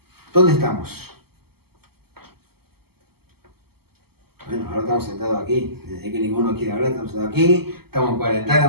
estamos? Bueno, ahora estamos sentados aquí, desde que ninguno quiere hablar, estamos sentados aquí, estamos en cuarentena,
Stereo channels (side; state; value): left; late; 0.96 ms